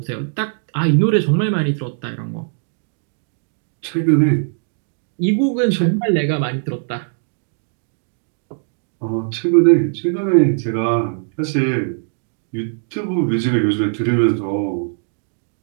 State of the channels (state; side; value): silent; left; digital silence